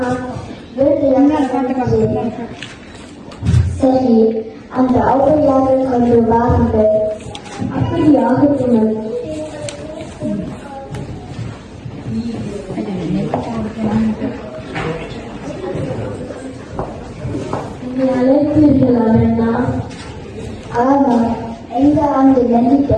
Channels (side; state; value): both; identical; correlation 1.00